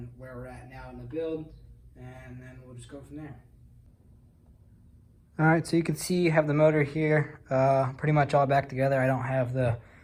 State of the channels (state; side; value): identical; both; correlation 1.00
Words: where we're at now in the build, and then we'll just go from there. Alright, so you can see you have the motor here, pretty much all back together. I don't have the